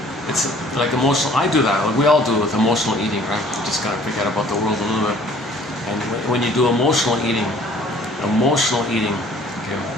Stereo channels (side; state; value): both; normal; correlation 0.54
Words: It's like emotional. I do that. Like we all do with emotional eating, right? You just gotta forget about the world a little bit. And when you do emotional eating, okay,